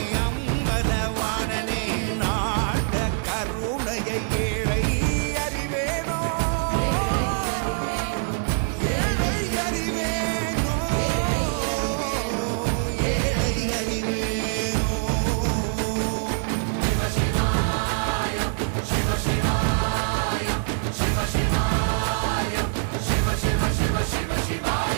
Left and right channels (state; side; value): silent; left; digital silence